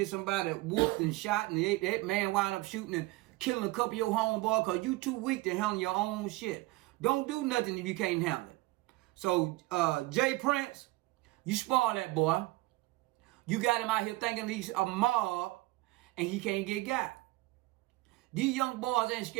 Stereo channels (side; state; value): left; quieter; 20.7 dB